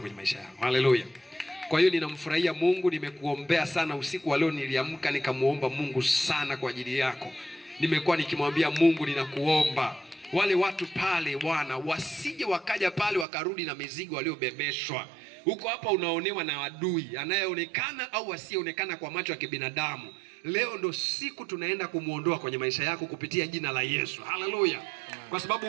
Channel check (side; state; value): left; drops out; at 13.2 s